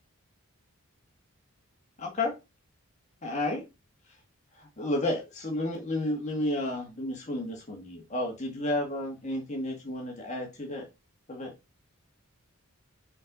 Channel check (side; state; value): both; normal; correlation 0.35